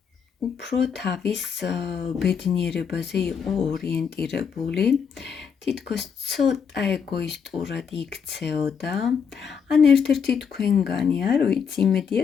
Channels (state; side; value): quieter; right; 6.7 dB